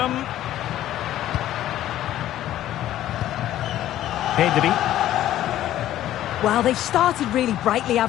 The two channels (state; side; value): quieter; right; 13.1 dB